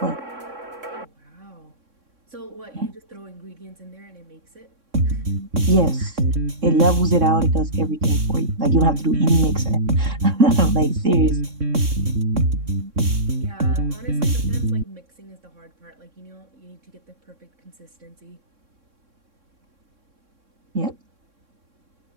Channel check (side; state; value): left; late; 3.6 ms